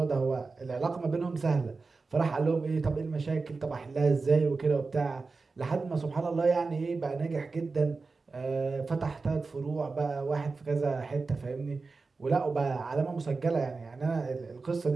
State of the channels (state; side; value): quieter; left; 4.1 dB